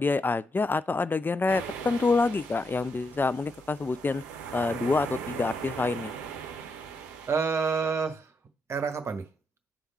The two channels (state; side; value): normal; both; correlation 0.80